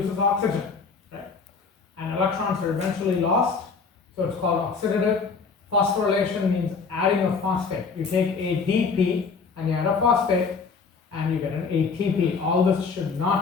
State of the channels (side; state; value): right; quieter; 5.1 dB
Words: oxygen, right? And electrons are eventually lost, so it's called oxidative. Phosphorylation means adding a phosphate. You take ADP and you add a phosphate and you get an ATP. All this should